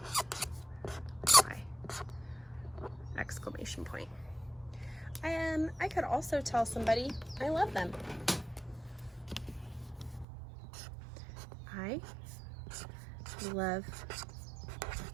Exclamation point. I could also tell somebody I love them. I love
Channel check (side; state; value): left; drops out; at 10.2 s